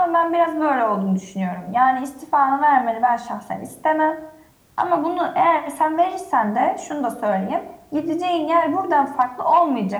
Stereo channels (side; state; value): both; identical; correlation 1.00